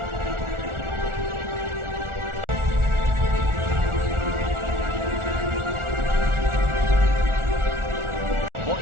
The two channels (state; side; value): late; left; 1.4 ms